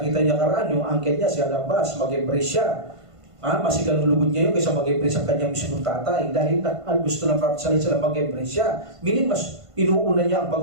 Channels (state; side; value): late; left; 1.5 ms